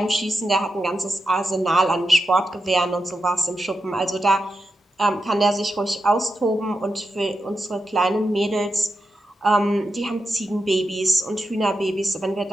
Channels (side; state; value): both; normal; correlation 0.88